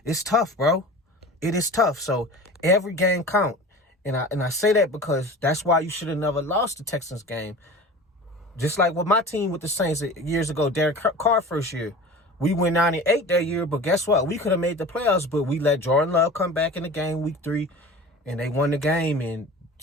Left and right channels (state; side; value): normal; both; correlation 0.37